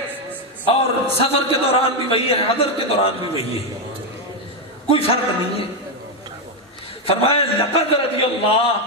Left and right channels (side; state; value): both; normal; correlation 0.05